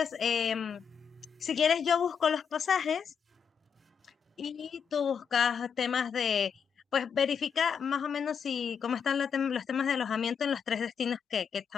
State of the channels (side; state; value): right; quieter; 7.0 dB